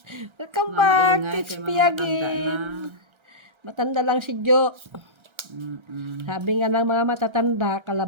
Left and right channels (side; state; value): left; late; 1.3 ms